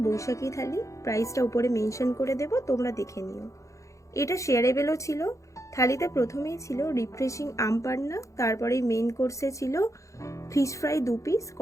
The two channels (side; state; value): right; late; 0.15 ms